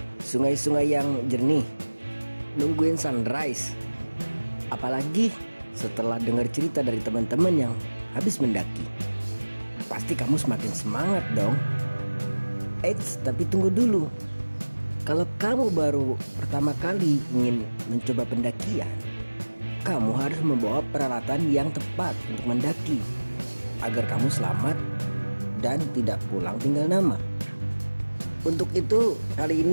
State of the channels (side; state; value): both; inverted; correlation -1.00